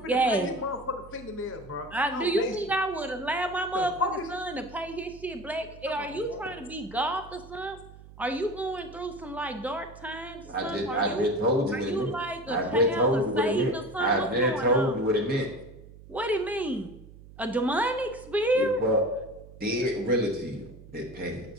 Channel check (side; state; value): right; noise; hum, 19 dB below the sound